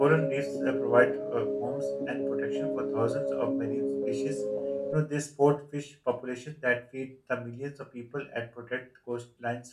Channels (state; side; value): identical; both; correlation 1.00